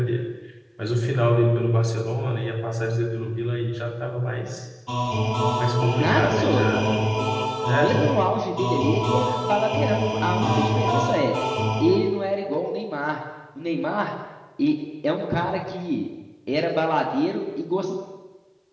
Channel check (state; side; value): identical; both; correlation 1.00